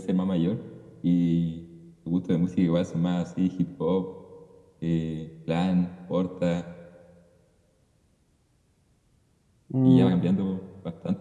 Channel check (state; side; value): identical; both; correlation 1.00